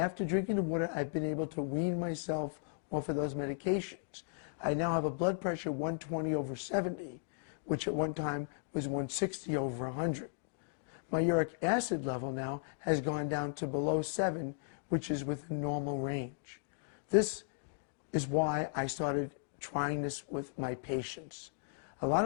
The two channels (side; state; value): right; silent; digital silence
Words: drinking the water, I've been able to wean myself off of those medications. I now have a blood pressure 120/70, which at one time was 160/100. My uric acid level now has gone down to below 7, which is within normal range. This is why I started trying this with my patients. A lot